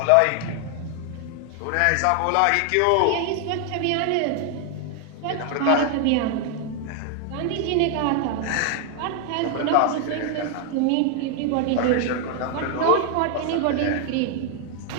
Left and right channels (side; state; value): both; different; correlation 0.00